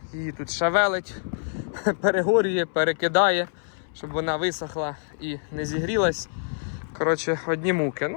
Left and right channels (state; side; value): silent; right; 61 dB below the other